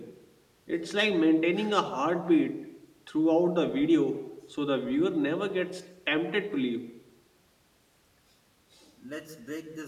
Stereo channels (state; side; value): identical; both; correlation 1.00